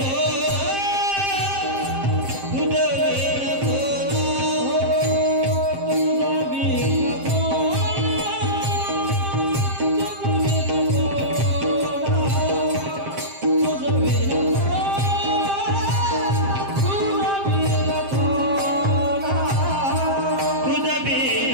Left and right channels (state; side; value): late; left; 7.6 ms